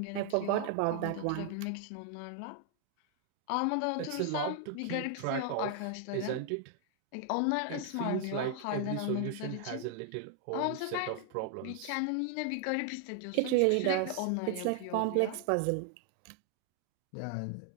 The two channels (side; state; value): both; different; correlation 0.00